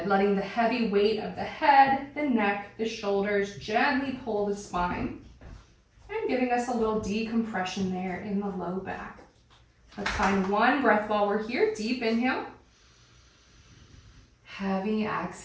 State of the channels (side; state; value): both; identical; correlation 1.00